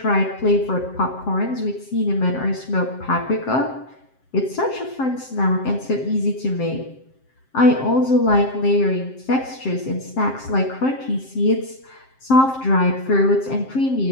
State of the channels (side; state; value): right; late; 7.6 ms